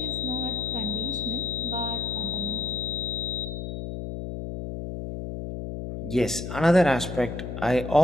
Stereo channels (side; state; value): left; noise; hum, 6 dB below the sound